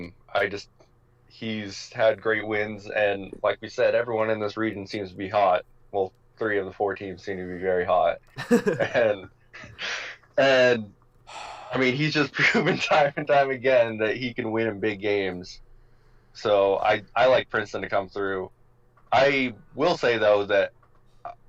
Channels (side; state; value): both; identical; correlation 1.00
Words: He's had great wins, and like we said, everyone in this region seems to be hot. Well, 3 of the 4 teams seem to be very hot, and I mean, he's just proven time and time again that he can win in big games. So I like Princeton to come through. I will say, though, that